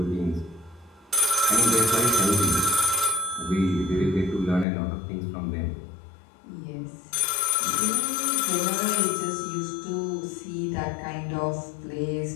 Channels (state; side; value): drops out; right; at 4.7 s